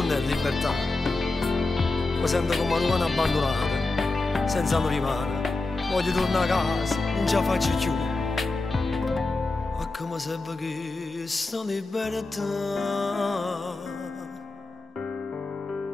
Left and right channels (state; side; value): quieter; right; 3.3 dB